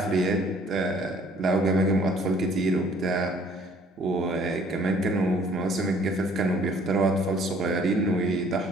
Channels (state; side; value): normal; both; correlation 0.58